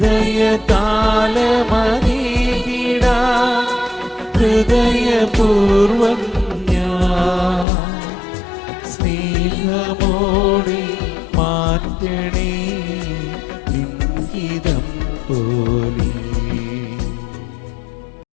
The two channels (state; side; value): drops out; right; at 7.7 s